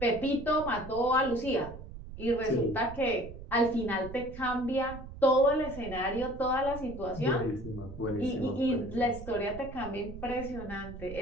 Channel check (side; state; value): right; noise; rumble, 13 dB below the sound